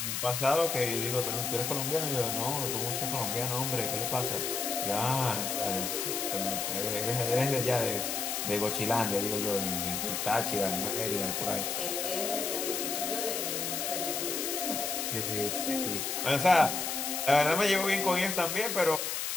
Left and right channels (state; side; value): noise; left; hiss, 1 dB below the sound